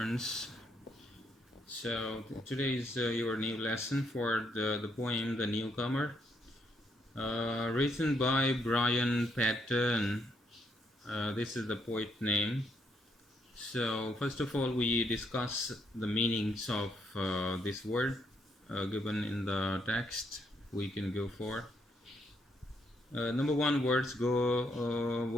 So today is your new lesson for the poem The Newcomer, written by Brian Patton. This is the poet name. So first of all, we discuss the meanings of this word given in the text. We can go for number one. Words.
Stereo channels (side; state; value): both; normal; correlation 0.74